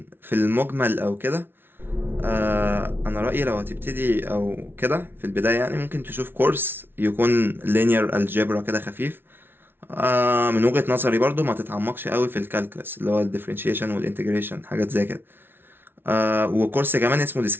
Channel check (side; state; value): left; late; 0.11 ms